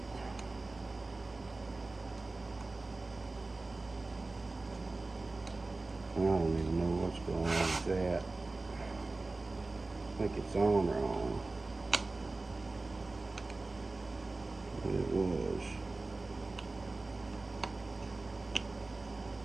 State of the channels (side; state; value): left; quieter; 3.3 dB